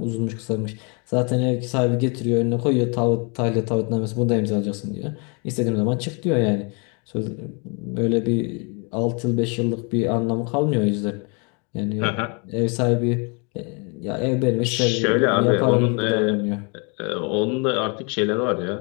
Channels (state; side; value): quieter; right; 34.0 dB